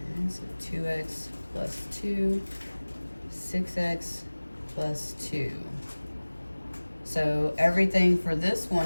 And so 2x plus 2, 6x plus 2. So everything for this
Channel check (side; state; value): both; inverted; correlation -1.00